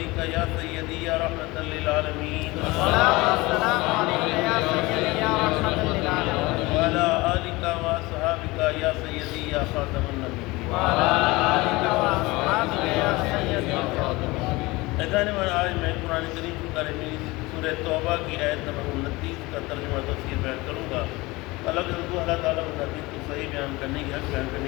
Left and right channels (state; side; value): quieter; right; 22.0 dB